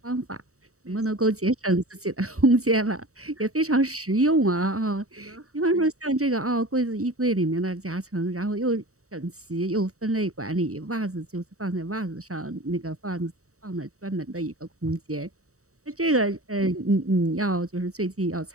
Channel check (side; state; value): left; late; 0.65 ms